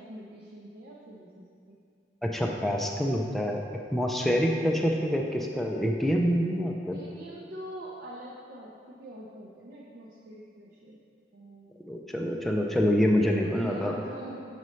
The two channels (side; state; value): both; normal; correlation 0.84